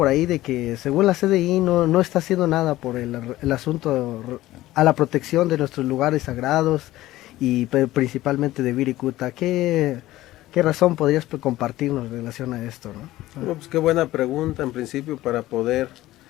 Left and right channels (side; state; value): right; quieter; 16.2 dB